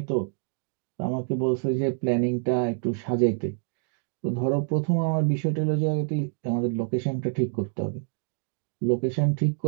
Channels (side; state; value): left; silent; digital silence